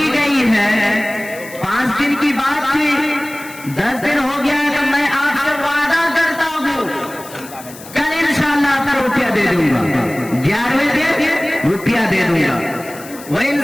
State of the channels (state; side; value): noise; left; hiss, 17 dB below the sound